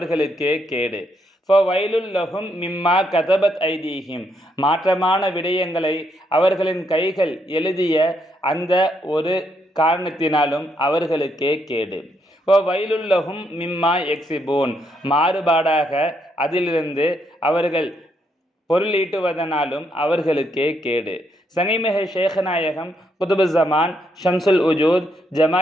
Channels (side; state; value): both; normal; correlation 0.76